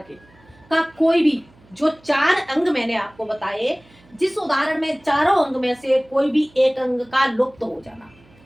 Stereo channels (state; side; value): noise; right; hum, 29 dB below the sound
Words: के का कोई भी जो 4 अंग मैंने आपको बताए, जिस उदाहरण में चारों अंग में से कोई भी एक अंग का लुप्त हो जाना।